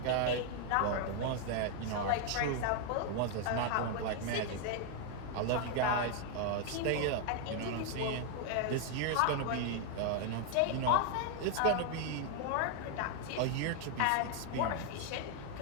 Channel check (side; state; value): both; different; correlation 0.00